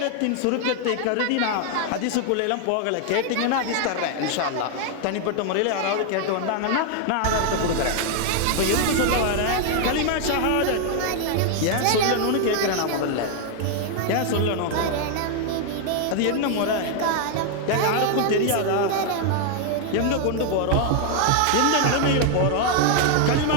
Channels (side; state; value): both; different; correlation 0.00